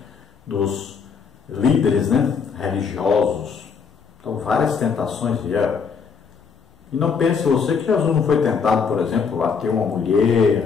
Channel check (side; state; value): right; quieter; 5.8 dB